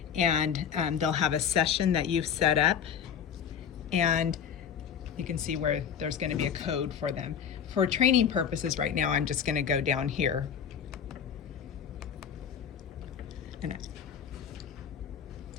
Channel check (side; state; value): right; quieter; 7.9 dB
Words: and they'll have a session that you've set up, and you can see where there's going to be a code for them. For training purposes right now, I'm just going to go down here. And